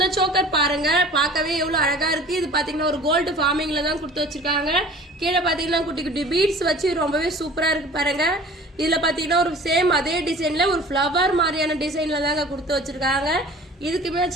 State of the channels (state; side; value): normal; both; correlation 0.44